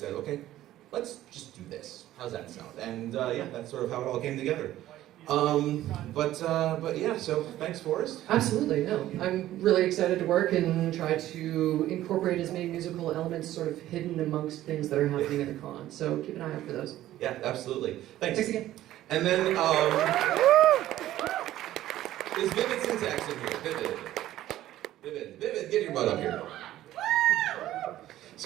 okay, let's just do this. How's that sound? And that's sort of how it all came together. But yeah, so thanks, Forrest. Absolutely, no. I'm really excited to work and try to incorporate as many musical elements sort of hidden amongst things that are happening at the con. So keep an eye out for those. Yeah, absolutely. Thanks. Thanks again. And then, is Vivid Syntax in here? Vivid, get your butt up here.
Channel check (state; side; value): quieter; left; 14.0 dB